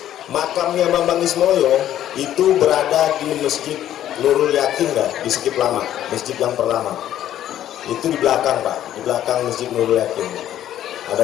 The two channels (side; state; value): right; quieter; 11.8 dB